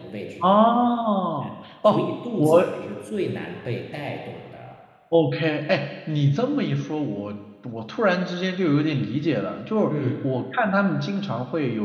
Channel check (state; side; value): identical; both; correlation 1.00